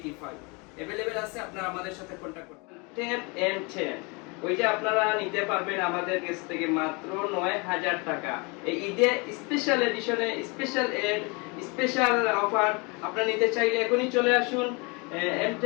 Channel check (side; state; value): right; quieter; 29.8 dB